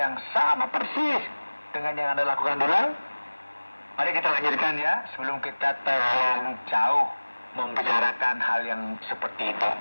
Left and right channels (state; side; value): inverted; both; correlation -1.00